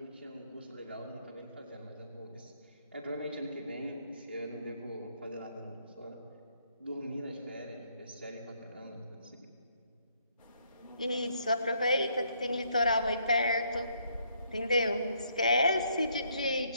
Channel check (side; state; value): both; inverted; correlation -0.70